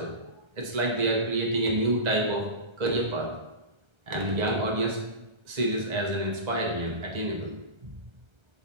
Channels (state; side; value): late; left; 1.3 ms